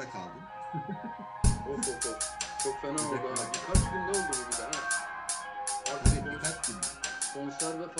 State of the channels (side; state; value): both; identical; correlation 1.00